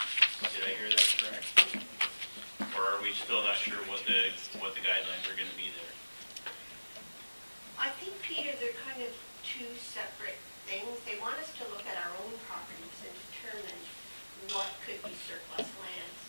Did I hear that correct? Or are we still not sure what the guidelines are going to be there? I think, Peter, they're kind of two separate things. They want us to look at our own properties and determine what could be surplus lands.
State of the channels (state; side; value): inverted; both; correlation -1.00